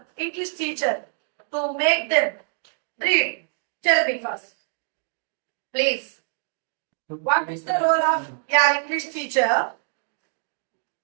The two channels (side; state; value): left; silent; digital silence